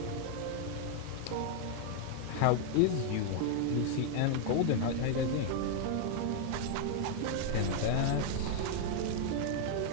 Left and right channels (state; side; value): different; both; correlation 0.00